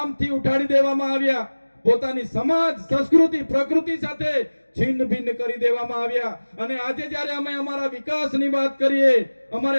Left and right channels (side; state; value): both; inverted; correlation -1.00